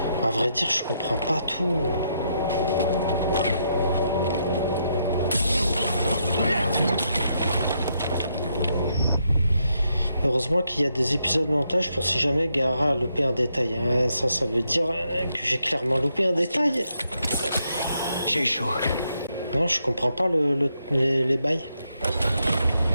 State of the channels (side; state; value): both; inverted; correlation -0.78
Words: À vrai dire, je comprends pas tout. Heureusement qu'il y a des épisodes montage pour si jamais Gara a loupé un détail. Hein. Ça veut dire que j'ai clairement loupé un détail. J'ai eu chaud. Non, je comprends pas les bails.